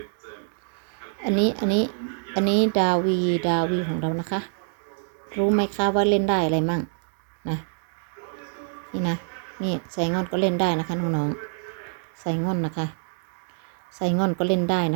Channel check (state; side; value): silent; left; 61 dB below the other